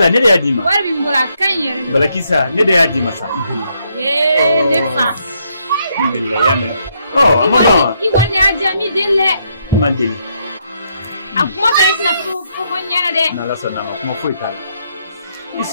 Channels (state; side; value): inverted; both; correlation -0.75